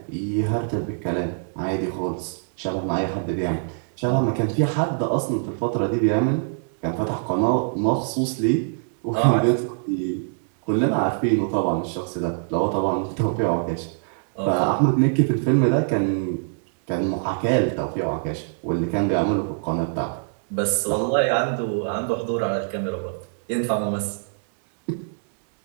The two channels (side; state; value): left; silent; digital silence